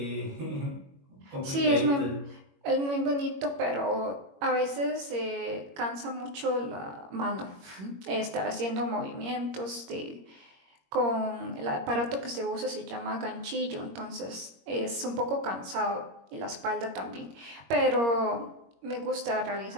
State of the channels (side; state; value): left; late; 21 ms